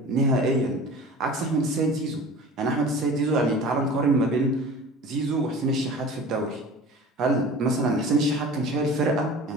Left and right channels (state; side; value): normal; both; correlation 0.39